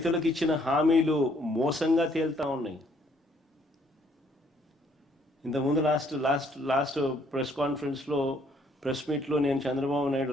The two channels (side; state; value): both; normal; correlation 0.65